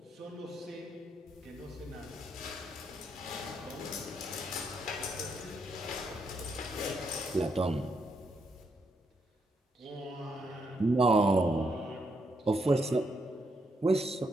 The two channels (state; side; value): normal; both; correlation 0.78